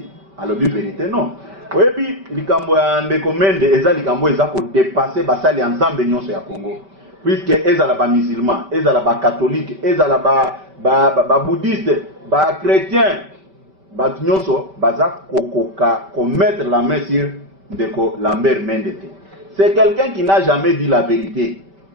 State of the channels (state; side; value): late; left; 5.2 ms